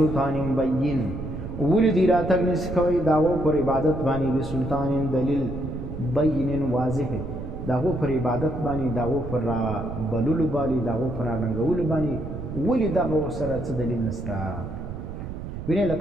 بین، ولې دي راتګ نشي کوي د هغو پر عبادت باندې بسلطان دلیل بین واضح، د هغو پر عبادت باندې د هغو پر بللو باندې د هغو پر راننګولو باندې ولې دغه ورسره څه دلیل نشته. وینئ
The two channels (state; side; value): noise; right; rumble, 8 dB below the sound